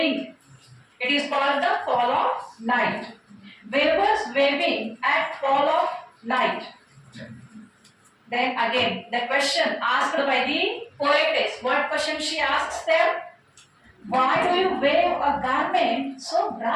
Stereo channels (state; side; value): identical; both; correlation 1.00